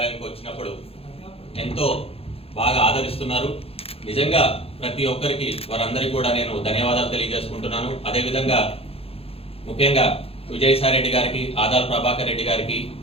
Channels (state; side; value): late; right; 0.28 ms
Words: వచ్చినప్పుడు ఎంతో బాగా ఆదరిస్తున్నారు. నిజంగా ప్రతి ఒక్కరికి వారందరికీ కూడా నేను ధన్యవాదాలు తెలియజేసుకుంటున్నాను. అదేవిధంగా ముఖ్యంగా విజయసాయి రెడ్డి గారికి, ఆదాల ప్రభాకర్ రెడ్డి గారికి